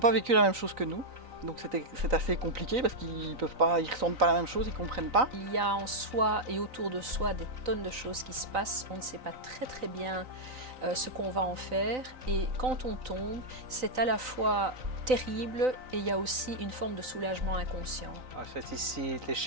vécu la même chose que nous. Donc c'est assez compliqué parce qu'ils ressentent pas la même chose, ils comprennent pas. Il y a en soi et autour de soi des tonnes de choses qui se passent. On ne sait pas très bien ce qu'on va en faire. Et quand on tombe, c'est à la fois terrible et il y a aussi une forme de soulagement inconscient. En fait, ici,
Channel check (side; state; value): left; late; 3.9 ms